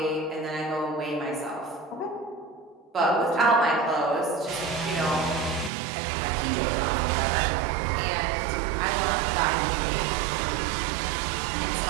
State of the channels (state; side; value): drops out; left; at 5.7 s